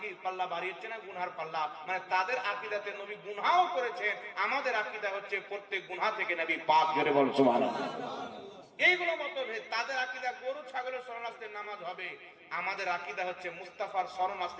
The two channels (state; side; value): identical; both; correlation 1.00